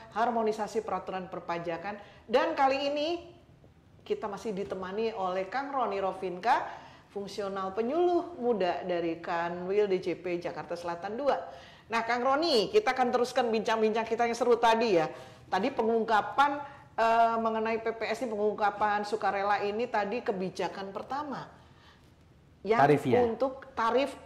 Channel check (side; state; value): both; identical; correlation 1.00